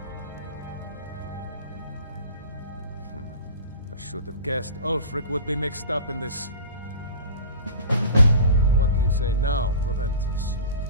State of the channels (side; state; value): both; inverted; correlation -0.36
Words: I should have guessed Ulfric would be mixed up in this. What do you say now, Proventus?